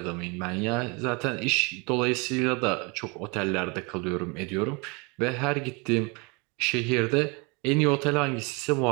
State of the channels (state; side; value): quieter; left; 29.8 dB